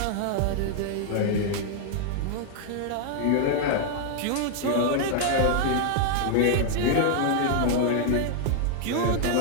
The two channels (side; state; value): both; different; correlation 0.00